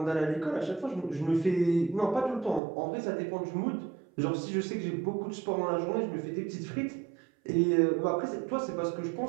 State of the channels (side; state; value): left; drops out; at 2.6 s